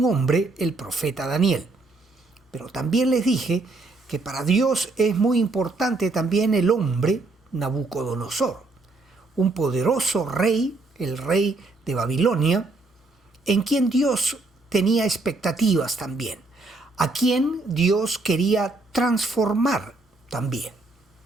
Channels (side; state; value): left; quieter; 3.3 dB